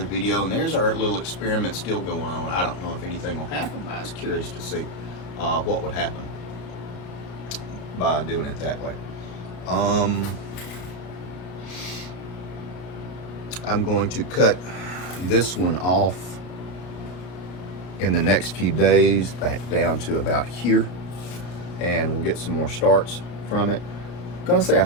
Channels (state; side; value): late; right; 33 ms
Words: video, and there's our little experiment still going on. I don't know if anything will happen, but I was curious to see what would happen by doing it that way. I'm going to cut this one off in the next few days, back down to about here, and we'll get some more starts from it. I'm gonna say I